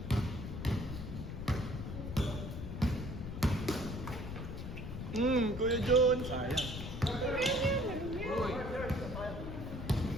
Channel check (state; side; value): noise; left; rumble, 7 dB below the sound